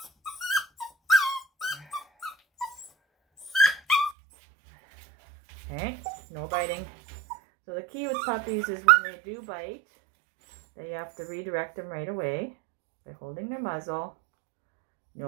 Okay, no biting. So the key with puppies is when they do bite, that you have to redirect them right away by holding their muzzle.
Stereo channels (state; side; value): drops out; left; at 4.2 s